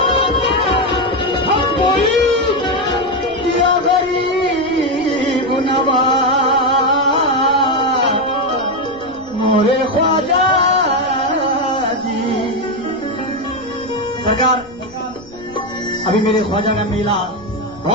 या गरीब नवाज मोरे ख्वाजा जी। सरकार, अभी मेरे ख्वाजा का मेला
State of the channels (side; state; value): left; noise; rumble, 24 dB below the sound